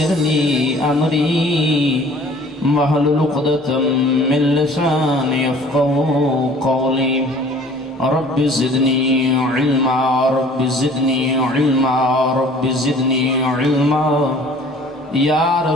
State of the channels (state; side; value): normal; both; correlation 0.50